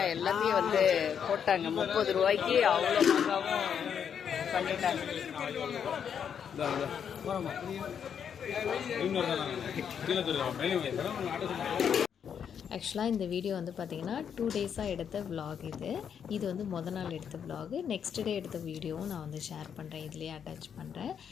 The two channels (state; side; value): quieter; right; 7.8 dB